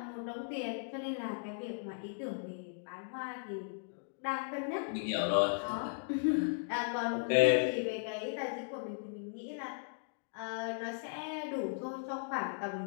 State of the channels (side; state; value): right; silent; digital silence